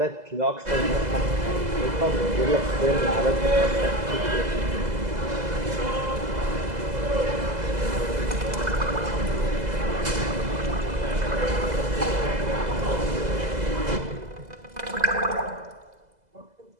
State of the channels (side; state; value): left; late; 2.0 ms